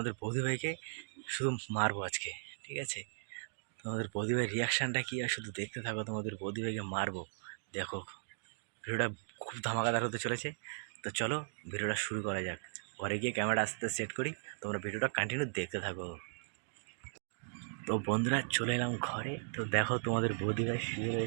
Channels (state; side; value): silent; left; digital silence